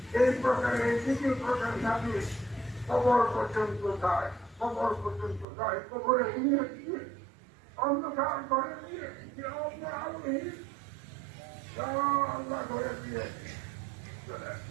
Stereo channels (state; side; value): drops out; left; at 5.5 s